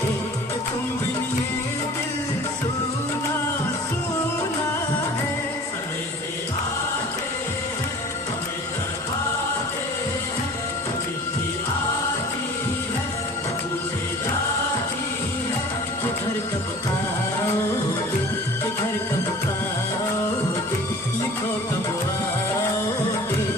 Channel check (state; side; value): normal; both; correlation 0.44